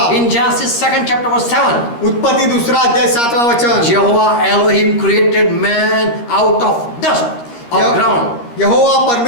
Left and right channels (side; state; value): right; late; 13 ms